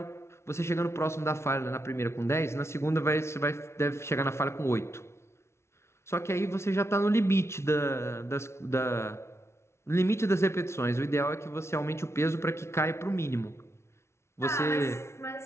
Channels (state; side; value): late; right; 0.13 ms